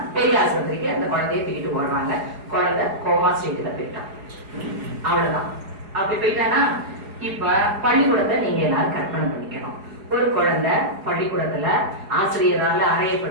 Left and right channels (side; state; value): left; late; 4.8 ms